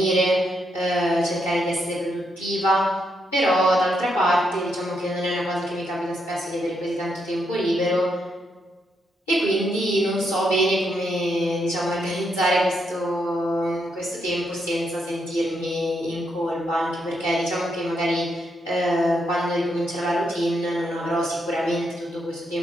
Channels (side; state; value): both; normal; correlation 0.79